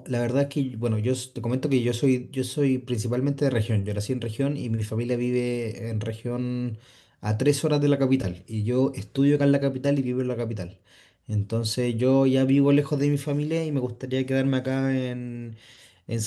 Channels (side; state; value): both; identical; correlation 1.00